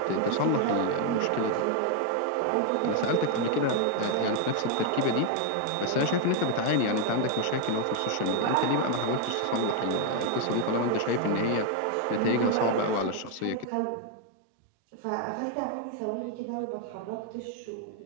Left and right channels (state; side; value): different; both; correlation 0.00